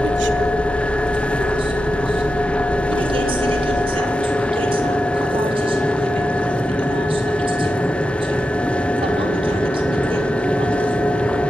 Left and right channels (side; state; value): both; normal; correlation 0.90